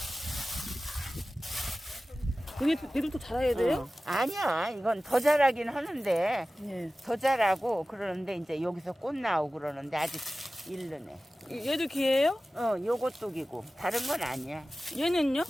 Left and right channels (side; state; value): both; normal; correlation 0.96